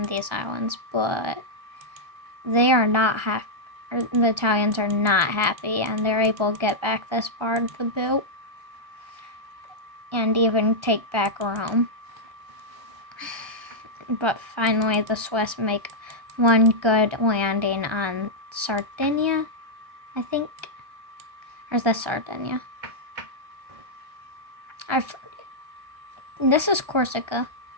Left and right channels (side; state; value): left; late; 1.3 ms